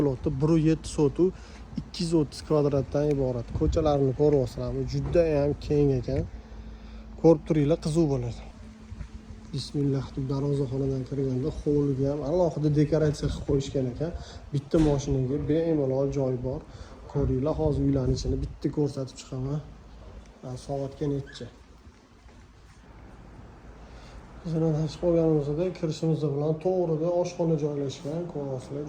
1.7 sotuv 230 kvadratdan iborat. Ko'chalarni ko'ryapsizlarmi? Juda ham keng ekan. Ko'rib turinglar, qiziq bo'ladi. Bismillah deb darvozaxonadan kirganda hovliga ham alohida dekoratsiya qilib qo'yishgan ekan. Bitta mashinaga bemalol joy bor. Ko'ringlar, hozir uylarning ichini bitta ko'rsatib chiqaman. Soatga necha? Bizning chiqib olganimizda kirishimiz bilan to'g'rida oshxona joylashgan. Ko'ryapsizlar,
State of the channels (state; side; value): identical; both; correlation 1.00